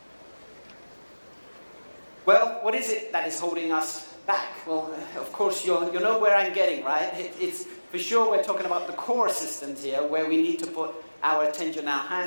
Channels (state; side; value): inverted; both; correlation -1.00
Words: Well, what is it that is holding us back? Well, of course, you know where I'm getting, right? It's for sure we're talking about the core systems here, where we need to put our attention, our